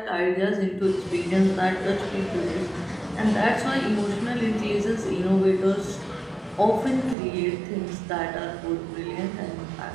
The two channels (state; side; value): drops out; left; at 7.2 s